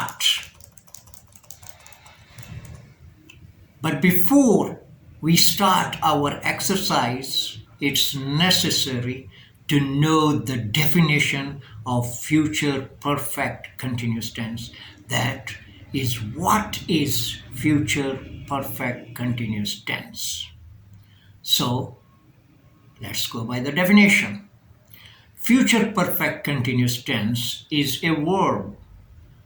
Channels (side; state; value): both; identical; correlation 1.00